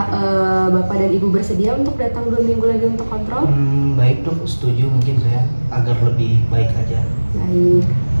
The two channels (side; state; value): both; inverted; correlation -1.00